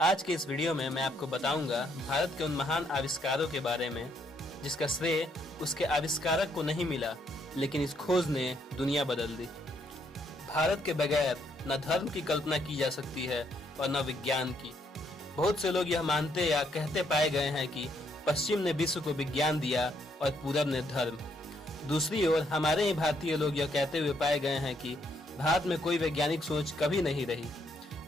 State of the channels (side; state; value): both; normal; correlation 0.73